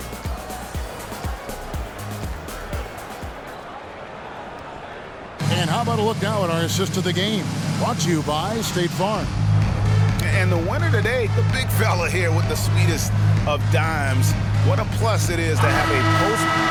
And how about a look now at our assist of the game? Brought to you by State Farm. And the winner today, the big fella here with the sweetest of dimes. What a plus it is to have a post.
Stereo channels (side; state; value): both; identical; correlation 1.00